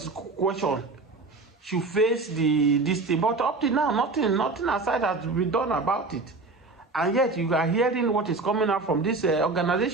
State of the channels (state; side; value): quieter; left; 3.6 dB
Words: question, should face this thing. But up to now, nothing aside has been done about it. And yet you are hearing what is coming out from this